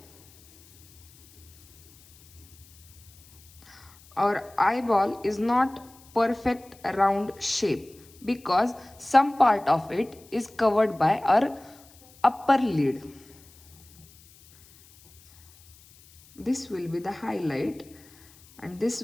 Our eyeball is not perfect round shape because some part of it is covered by our upper lid. This will be the highlight and this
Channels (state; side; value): noise; left; hiss, 26 dB below the sound